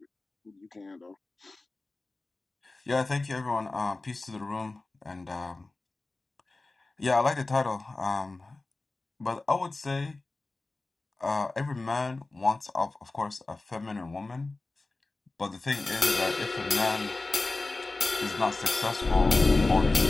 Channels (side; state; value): right; quieter; 3.3 dB